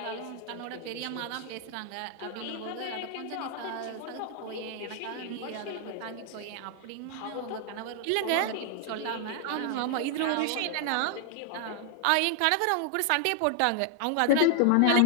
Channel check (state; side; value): different; both; correlation 0.00